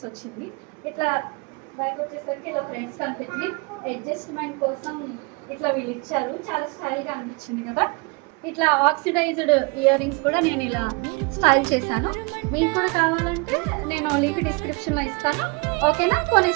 వచ్చింది. ఇట్లా బ్యాక్ వచ్చేసరికి ఇలా ఫ్రెండ్స్ కనిపించింది. అడ్జస్ట్మెంట్ కోసం ఇట్లా వీళ్ళు ఇచ్చారు. చాలా స్టైల్గా అనిపించింది కదా. ఇట్లా ఆక్సిడైజ్డ్ ఇయర్ రింగ్స్ కూడా నేను ఇలా స్టైల్ చేశాను. మీకు కూడా కావాలంటే నేను లింక్ డిస్క్రిప్షన్లో ఇస్తాను. ఓకేనా,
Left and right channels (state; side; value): quieter; left; 29.3 dB